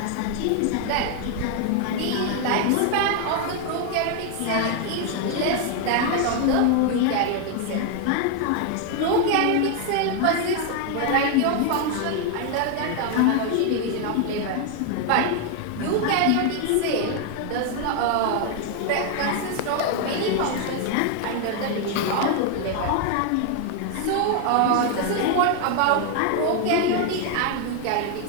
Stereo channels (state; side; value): different; both; correlation 0.01